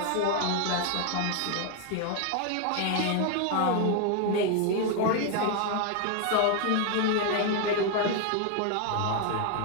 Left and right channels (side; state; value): both; different; correlation 0.01